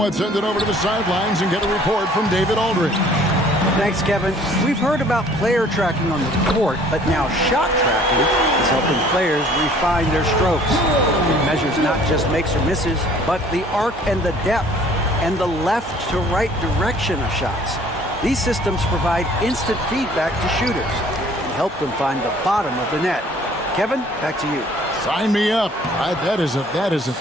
send it over to the sidelines and get a report from David Aldridge. Thanks, Kevin. We've heard about player tracking on the court, but now shot tracking is helping players refine their strokes. It measures not just makes or misses, but the arc and the depth and the left to right direction of shots. These systems provide instant feedback to shooters and help them find the bottom of the net. Kevin, back to you. Sign me up. That is a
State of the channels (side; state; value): both; normal; correlation 0.55